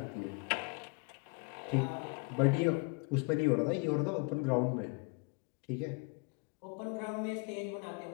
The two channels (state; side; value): quieter; right; 31.8 dB